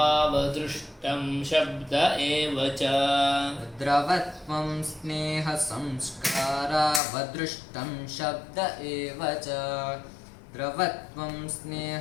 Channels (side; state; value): right; drops out; at 7.0 s